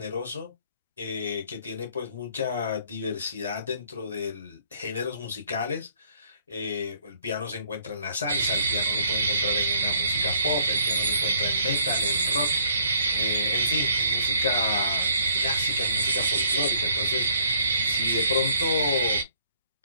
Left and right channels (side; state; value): both; inverted; correlation -0.64